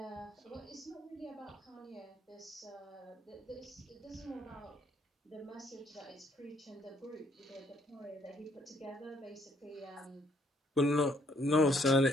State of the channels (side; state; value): both; normal; correlation 0.67